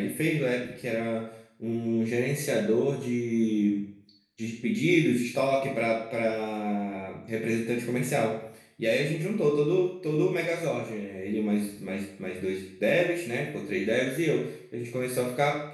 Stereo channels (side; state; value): both; identical; correlation 1.00